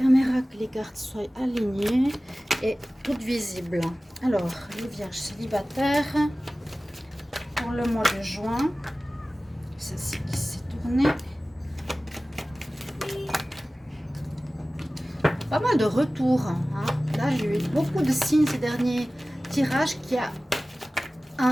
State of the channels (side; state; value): both; normal; correlation 0.97